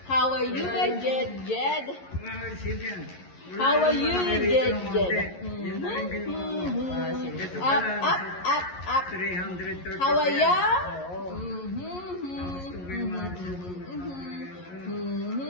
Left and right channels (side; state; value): right; late; 11 ms